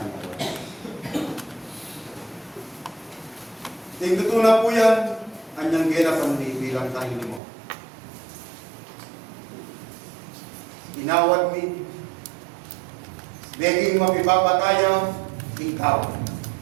po. Tingtutunan po yan, anyang gena pandi bilang tayo mo. Inawad mi, Beging mapipapataya, ikaw.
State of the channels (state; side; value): drops out; left; at 7.4 s